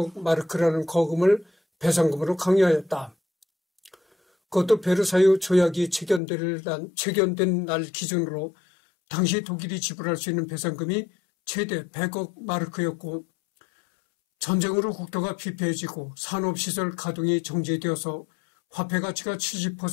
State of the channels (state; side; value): drops out; right; at 6.2 s